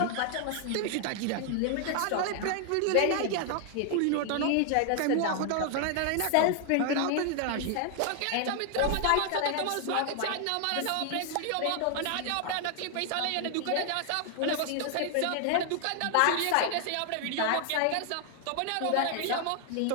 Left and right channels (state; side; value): different; both; correlation 0.00